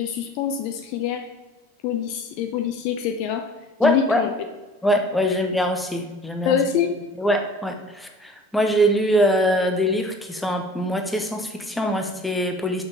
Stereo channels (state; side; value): normal; both; correlation 0.46